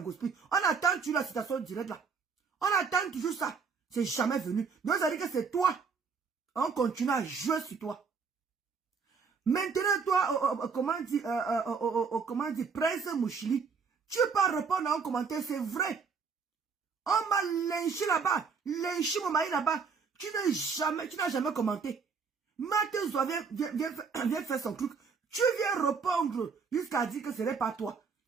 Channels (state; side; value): quieter; left; 5.5 dB